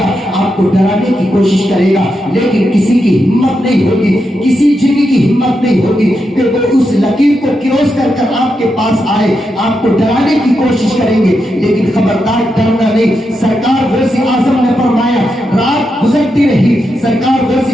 آپ کو ڈرانے کی کوشش کرے گا, لیکن کسی کی ہمت نہیں ہوگی, کسی جن کی ہمت نہیں ہوگی کہ وہ اس لکیر کو کراس کر کر آپ کے پاس آئے. آپ کو ڈرانے کی کوشش کریں گے, لیکن خبردار ڈرنا نہیں. سرکار غوث اعظم نے فرمایا رات گزرتی رہی. سرکار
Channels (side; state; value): both; normal; correlation 0.85